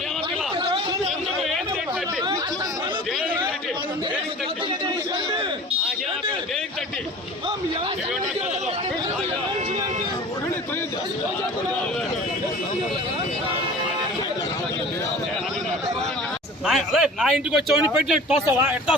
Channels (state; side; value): normal; both; correlation 0.41